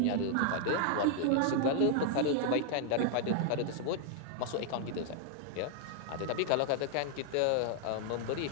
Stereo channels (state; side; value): different; both; correlation 0.00